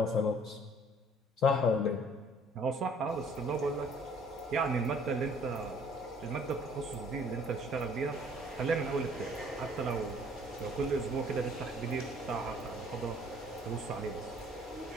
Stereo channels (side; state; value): both; normal; correlation 0.57